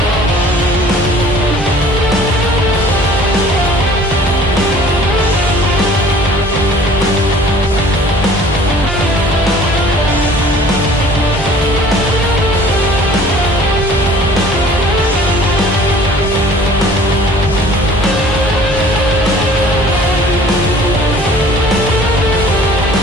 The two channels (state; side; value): normal; both; correlation 0.50